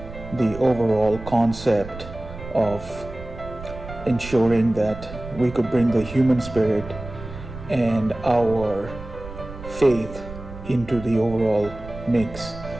the overall concept of ensuring that we could bring the human spirit and our faith into the overall mix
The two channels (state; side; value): noise; right; rumble, 13 dB below the sound